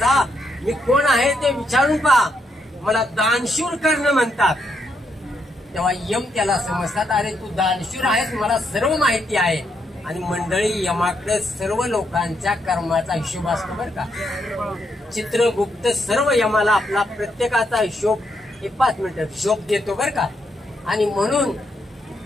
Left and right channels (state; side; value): normal; both; correlation 0.78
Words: मी कोण आहे ते विचारून पहा. मला दानशूर कर्ण म्हणतात. तेव्हा यम त्याला समजतात, अरे तू दानशूर आहेस, मला सर्व माहिती आहे. आणि मंडळी, यमाकडे सर्व लोकांच्या कर्माचा हिशोब असतो बरं का. चित्रगुप्त सर्व यमाला आपला प्रत्येकाचा हिशोब 5 मिनिटं हिशोब देतो बरं का. आणि म्हणून